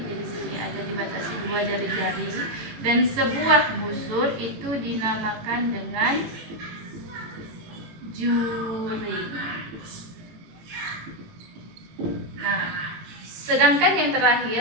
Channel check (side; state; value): left; late; 18 ms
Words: Jadi sini ada dibatasi 2 jari-jari. Dan sebuah busur itu dinamakan dengan juring. Nah, sedangkan yang